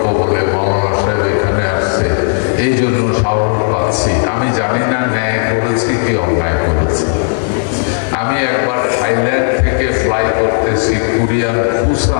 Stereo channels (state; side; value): silent; right; digital silence